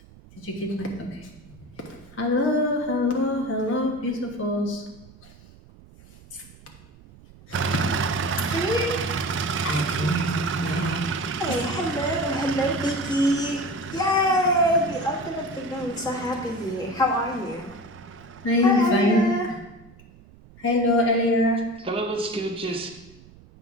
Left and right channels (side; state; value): right; noise; rumble, 23 dB below the sound